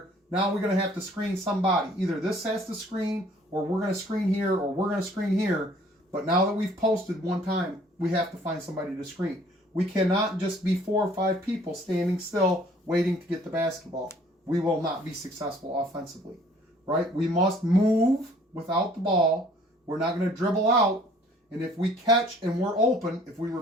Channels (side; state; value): both; normal; correlation 0.56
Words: now we're going to have to screen somebody. Either this has to screen, or we're going to screen here, or we're going to screen here. But now that we've posted one time, we have to find somebody to screen. We cannot just be 4 or 5 people standing still waiting to get the basketball. We will not be successful offensively, right? We must move without the ball. We're not going to dribble out. And if we catch and we're open, if we